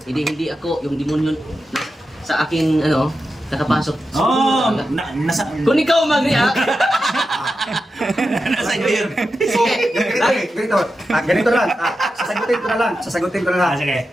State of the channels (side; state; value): both; normal; correlation 0.90